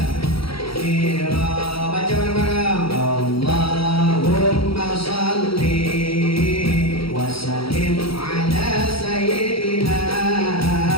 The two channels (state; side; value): late; right; 0.75 ms